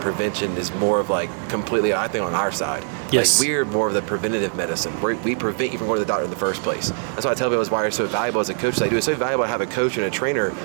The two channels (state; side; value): silent; left; 64 dB below the other